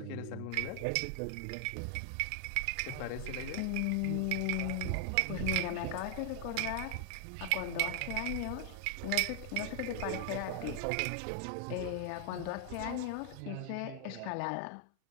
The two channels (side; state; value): both; different; correlation 0.00